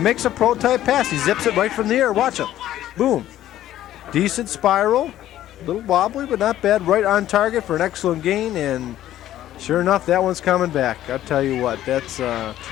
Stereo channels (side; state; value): right; quieter; 12.9 dB